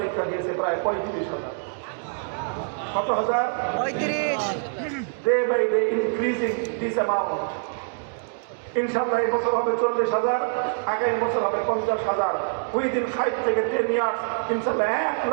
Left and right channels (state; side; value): silent; left; 62 dB below the other